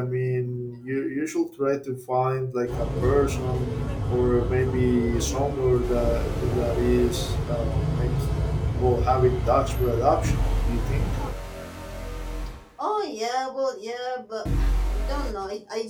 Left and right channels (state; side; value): identical; both; correlation 1.00